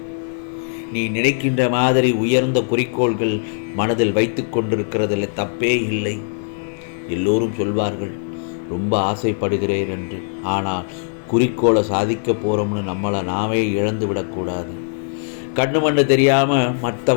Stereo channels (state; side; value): silent; right; digital silence